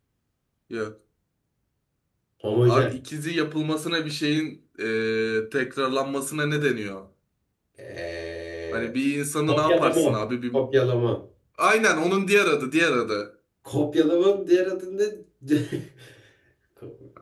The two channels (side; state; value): both; identical; correlation 1.00